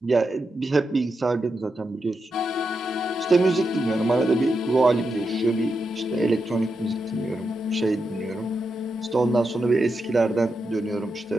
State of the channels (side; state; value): both; normal; correlation 0.86